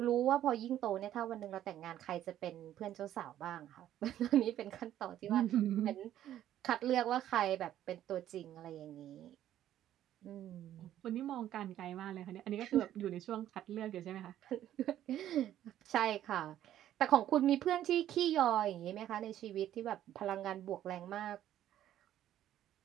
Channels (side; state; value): left; quieter; 12.0 dB